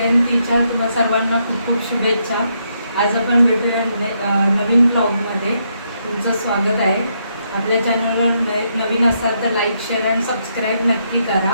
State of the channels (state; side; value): inverted; both; correlation -0.77